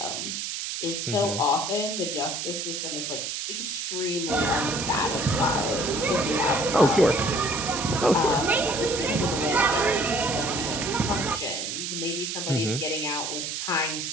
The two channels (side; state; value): right; noise; hiss, 4 dB below the sound